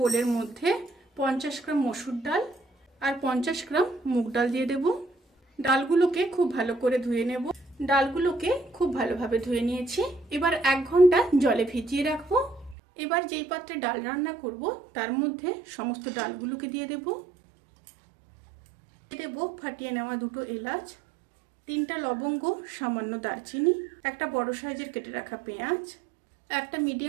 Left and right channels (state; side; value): drops out; left; at 12.8 s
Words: মধ্যে 50 গ্রাম মসুর ডাল আর 50 গ্রাম মুগ ডাল দিয়ে দেব। ডালগুলোকে খুব ভালো করে ধুয়ে নেব। ডালগুলোকে খুব ভালোভাবে ধুয়ে নিয়েছি। এবার 1 ঘন্টা জলে ভিজিয়ে রাখবো। এবার যেই পাত্রে ডাল রান্না করব তার মধ্যে সমস্ত ডালগুলোকে দিয়ে দেব। ফাটিয়ে নেওয়া 2টো এলাচ, 3টা লবঙ্গ, সামান্য দারচিনি, একটা বড় সাইজের কেটে রাখা পেঁয়াজ, একটা